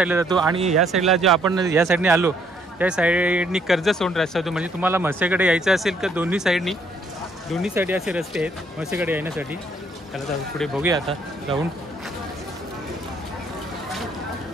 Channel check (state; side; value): normal; both; correlation 0.67